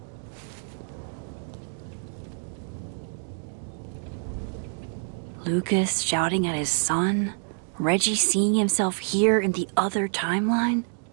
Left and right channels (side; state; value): left; silent; digital silence